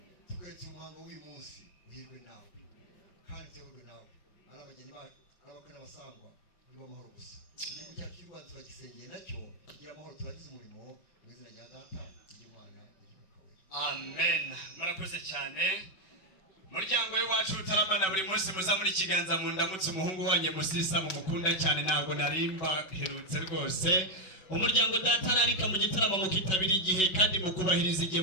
twese umuhango w'uyu munsi uhirwe nawe kandi tuyoborwe nawe ari abageni bacu ari abakwe n'abasangwa nibo amahoro gusa igihugu cyacu cy'u Rwanda turagisengeye nacyo kigira amahoro turagize umurimo mu izina rya data ry'Imana amen. Murakoze cyane muryango w'iwacu utaramana buri munsi muza muri kiganza mu ndamutse umuhungu wanjye Musisa mu mukunda cyane ntabwo narimba herutse rwose. Umuryango data narika mu gitaramo mukitabira igihe kandi mukubahiriza igihe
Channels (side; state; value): right; late; 5.3 ms